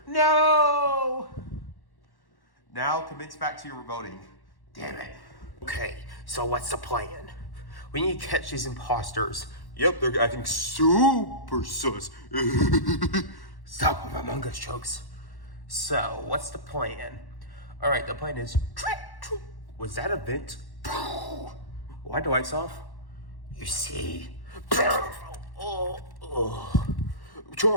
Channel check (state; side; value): late; right; 1.1 ms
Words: No. Now commence back to your voting. Damn it. Okay, so what's the plan? We need to catch these imposters. Yep, they're acting super sus. Stop with Among Us jokes. So, what's the plan? Alright, the plan is... Was that a vent? Why the lights off? You see? Char,